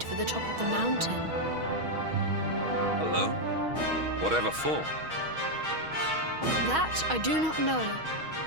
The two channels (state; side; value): late; left; 6.3 ms